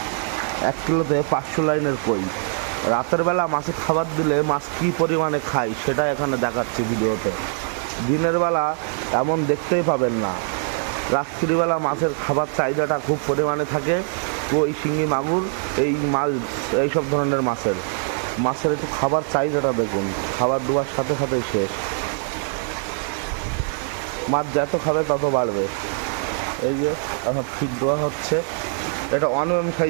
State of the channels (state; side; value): silent; left; 64 dB below the other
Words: 1 কিলোতে 500 লাইনের কই। রাতের বেলা মাছে খাবার দিলে মাছ কী পরিমাণে খায় সেটা এখানে দেখাচ্ছি ভিডিওতে। দিনের বেলা এমন দেখতেই পাবেন না। রাত্রিবেলা মাছের খাবার চাহিদাটা খুব পরিমাণে থাকে। কই, শিঙি, মাগুর, এই মাছ, এইসব ধরনের মাছের একটু খাবার চাহিদাটা দেখুন। খাবার দেওয়ার সাথে সাথেই শেষ। মাছ যত খাবে তত বাড়বে। এই যে এখন ফিড দেওয়া হচ্ছে, এটা 1 mm